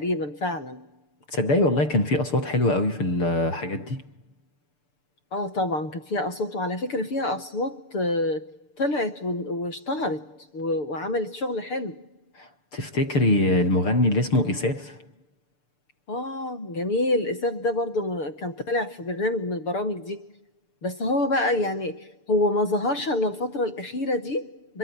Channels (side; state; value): right; late; 6.8 ms